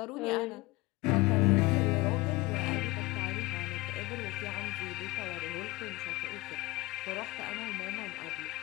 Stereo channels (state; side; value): quieter; right; 21.3 dB